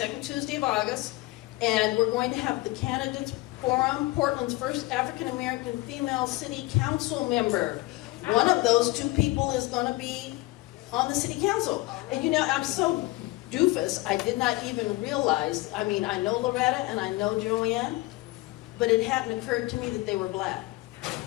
Tuesday of August, and we're going to have the Candidates Forum, Portland's first African-American female city council member. One of those 2 people is going to be on the city council. And you know, I'm so doofus, I did not even realize, I mean, I know Loretta and I know Joanne, but it hadn't occurred to me that they were black.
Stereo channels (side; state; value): right; quieter; 20.2 dB